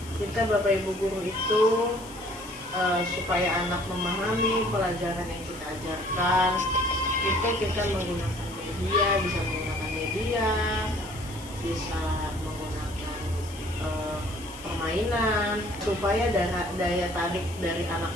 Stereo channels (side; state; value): left; noise; hiss, 18 dB below the sound